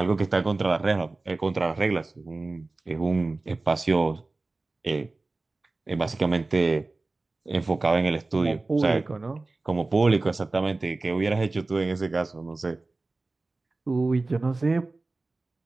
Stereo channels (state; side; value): quieter; left; 3.3 dB